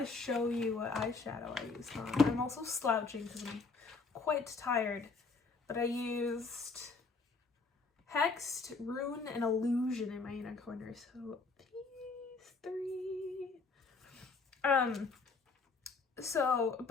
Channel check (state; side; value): quieter; right; 4.3 dB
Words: show you what eyeshadow I used on. I'm also slouching because I'm quite tired. But I used Hexed, Rune, and Illusion in my inner corner. So these three.